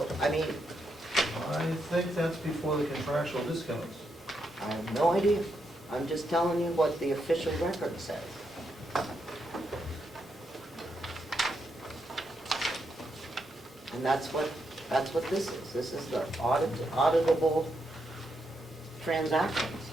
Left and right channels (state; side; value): normal; both; correlation 0.81